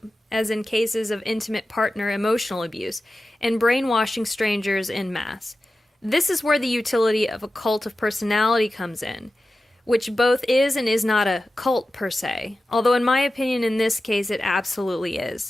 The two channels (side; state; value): both; normal; correlation 0.94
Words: as in cases of intimate partner emotional abuse, and brainwashing strangers en masse. This is where the utility of a cult of personality comes in, which both is and is not a cult per se, although in my opinion in this case it absolutely